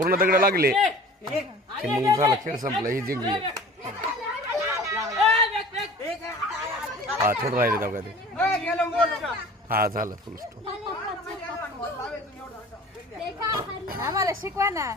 दगड लागले की मग झाला, खेळ संपला, ही जिंकली. हा, थोडं राहिले तेव्हा ते. हा, झालं फुल स्टॉप. आम्हाला शिकवा ना.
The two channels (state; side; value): normal; both; correlation 0.43